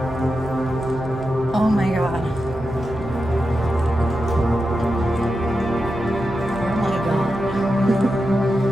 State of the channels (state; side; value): noise; right; hum, 14 dB below the sound